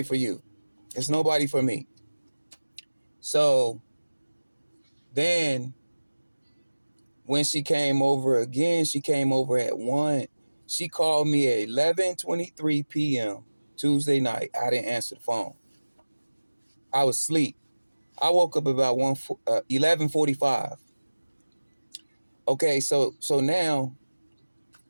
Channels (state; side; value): inverted; both; correlation -1.00